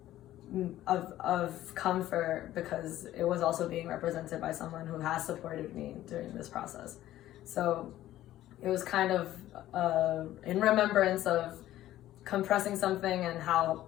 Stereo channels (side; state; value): right; quieter; 13.9 dB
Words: of comfort, because it was also being represented by someone who has supported me during this process. So it was kind of in remembrance of compressing something and how